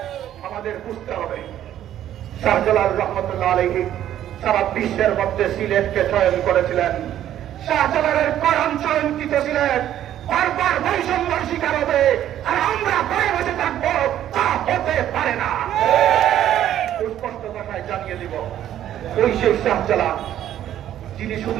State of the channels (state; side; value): quieter; left; 11.6 dB